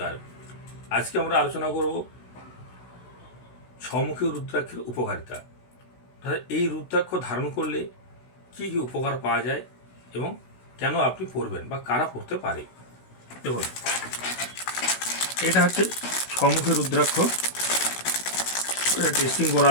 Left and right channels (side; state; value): right; late; 16 ms